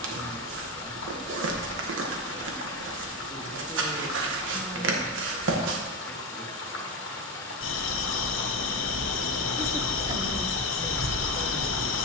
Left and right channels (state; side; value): normal; both; correlation 0.13